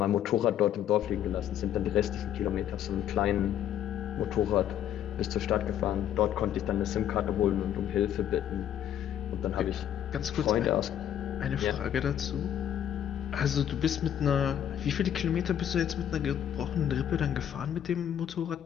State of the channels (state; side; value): quieter; right; 10.4 dB